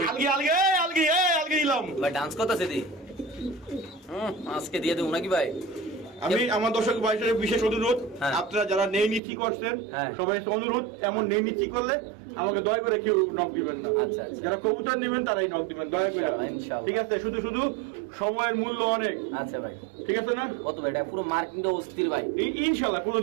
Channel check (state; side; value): drops out; left; at 9.2 s